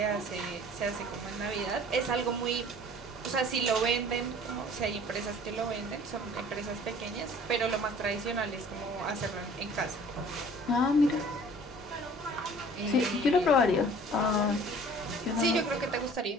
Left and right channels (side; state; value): both; normal; correlation 0.49